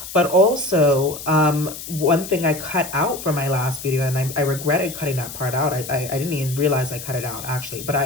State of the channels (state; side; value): noise; left; hiss, 11 dB below the sound